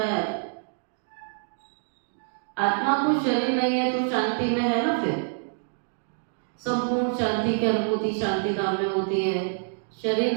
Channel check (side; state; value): left; silent; digital silence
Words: है। आत्मा को शरीर नहीं है तो शांति में है ना, फिर संपूर्ण शांति की अनुभूति शांति धाम में होती है। शरीर